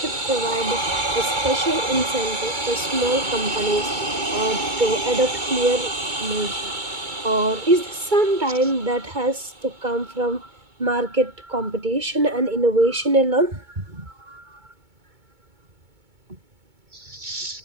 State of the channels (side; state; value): left; late; 2.2 ms